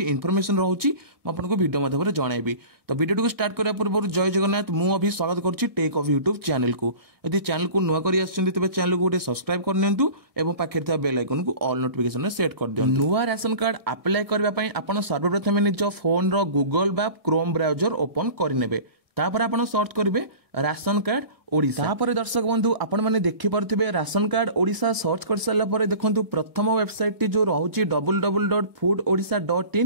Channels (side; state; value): left; late; 1.6 ms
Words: इनफॉरमेशन रोचे मुझे वीडियो माध्यम जनइबी। तो वीडियो को स्टार्ट करने पूर्व जय जगन्नाथ मुझे स्वागत करुच्ची टेक ऑफ यूट्यूब चैनल को। यदि चैनल को नुआ कर तेज चैनल को गोटे सब्सक्राइब कर पाखे बेल आइकन को ऑल नोटिफिकेशन सेट कर दियो। नुआ राशन कार्ड अप्लाई करने आप सर्वप्रथम निज फोन रो गूगल बा क्रोम ब्राउजर ओपन करने तापर आपण सर्च करेंगे राशन कार्ड ओडिशा। तापर दर्शक बंधु आपण मैंने देखिपे राशन कार्ड ओडिशा सर्च कर सारा पर देखो प्रथम वेबसाइट टी जो रोचे